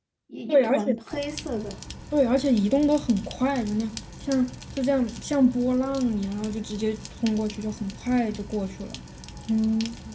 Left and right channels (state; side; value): identical; both; correlation 1.00